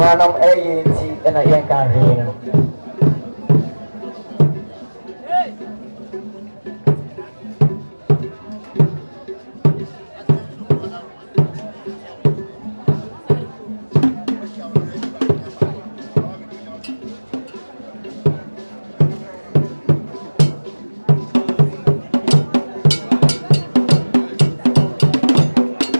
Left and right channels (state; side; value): inverted; both; correlation -1.00